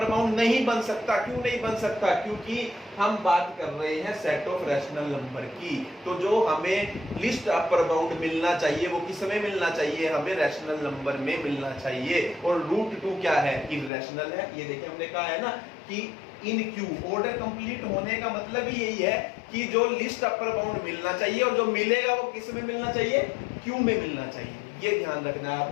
बाउंड नहीं बन सकता। क्यों नहीं बन सकता, क्योंकि हम बात कर रहे हैं सेट ऑफ रैशनल नंबर की। तो जो हमें लिस्ट अपर बाउंड मिलना चाहिए वो किस में मिलना चाहिए, हमें रैशनल नंबर में मिलना चाहिए। और √2 क्या है, इरैशनल है। ये देखिए हमने कहा है ना कि इन क्यू, ऑर्डर कंप्लीट होने का मतलब ही यही है कि जो लिस्ट अपर बाउंड मिलना चाहिए और जो मिलेगा वो किस में मिलना चाहिए, क्यू में मिलना चाहिए। ये ध्यान रखना है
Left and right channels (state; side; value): drops out; right; at 13.9 s